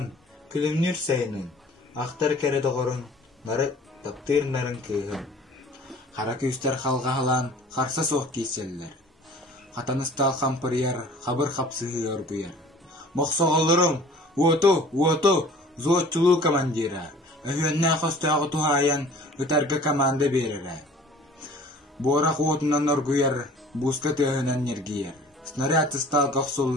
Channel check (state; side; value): normal; both; correlation 0.48